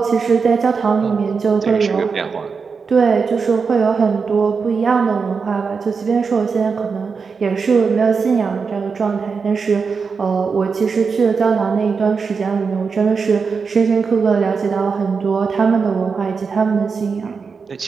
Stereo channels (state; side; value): quieter; left; 5.3 dB